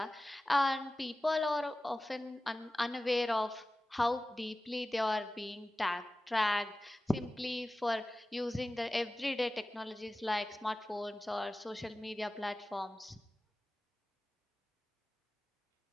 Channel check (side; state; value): both; normal; correlation 0.96